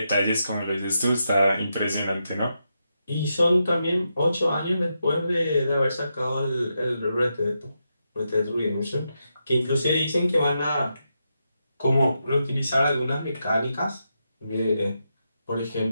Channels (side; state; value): both; inverted; correlation -0.85